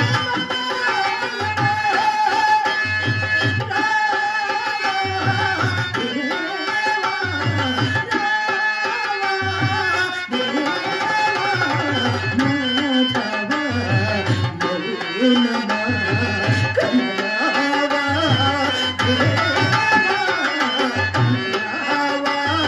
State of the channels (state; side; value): identical; both; correlation 1.00